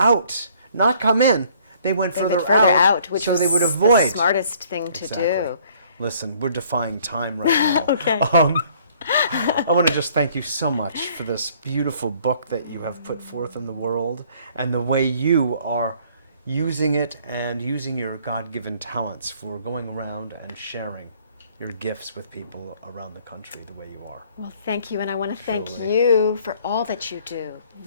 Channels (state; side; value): inverted; both; correlation -0.59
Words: not come in. They went They further, went further out, which so was they would avoid. the smartest thing to do. Listen, we're defying time right now. Okay. I want to just thank you so much for this beautiful book that you have put forth in the world, and the way you are using it and using your God-given talents for going around and sharing your gifts with people around the country the way you are. Well, thank you, and I want to thank Truly. you for all that you do.